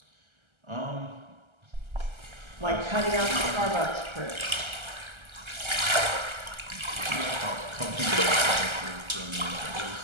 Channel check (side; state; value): left; late; 1.3 ms